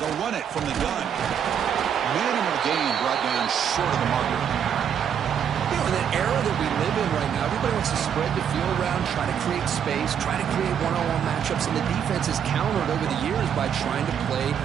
They'll run it from the gun. Minimal gain brought down short of the marker. You know, in the era that we live in right now, everybody wants to spread the field around, try to create space, try to create one-on-one matchups, and the defense has countered over the years by trying to play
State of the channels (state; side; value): quieter; left; 8.3 dB